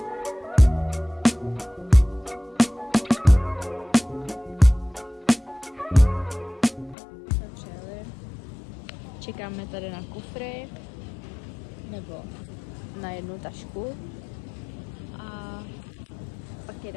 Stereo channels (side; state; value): right; drops out; at 7.0 s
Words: Čekáme tady na kufry, nebo na jednu tašku a pak